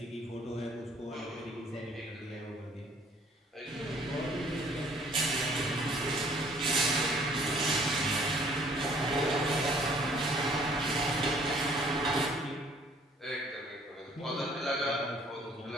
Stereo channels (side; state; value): both; normal; correlation 0.58